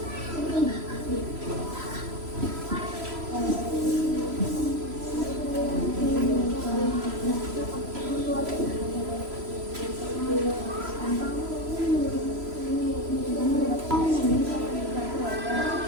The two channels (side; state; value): left; late; 3.0 ms